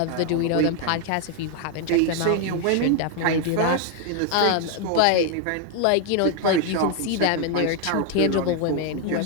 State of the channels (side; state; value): both; different; correlation 0.00